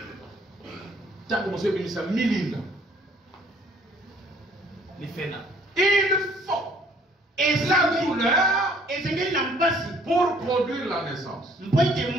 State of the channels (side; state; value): both; normal; correlation 0.60